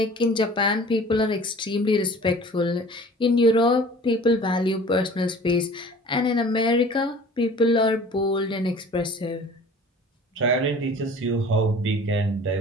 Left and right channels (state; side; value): normal; both; correlation 0.46